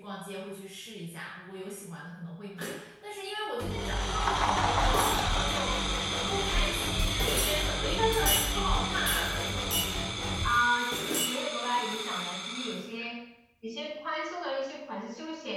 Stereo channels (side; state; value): both; identical; correlation 1.00